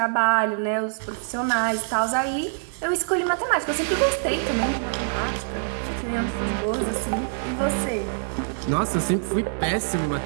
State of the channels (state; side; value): silent; left; digital silence